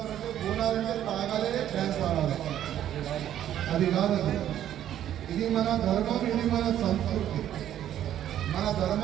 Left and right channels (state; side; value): quieter; left; 11.2 dB